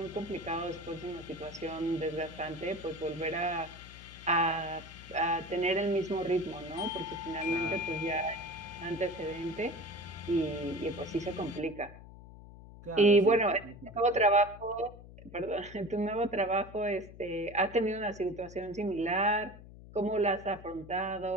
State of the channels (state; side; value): noise; left; hum, 17 dB below the sound